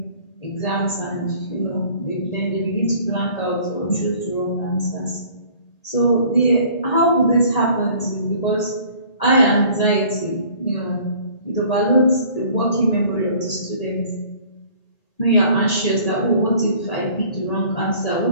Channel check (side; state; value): right; late; 1.8 ms